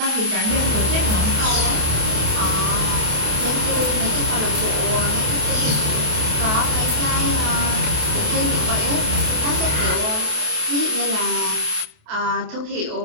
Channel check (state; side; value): late; left; 28 ms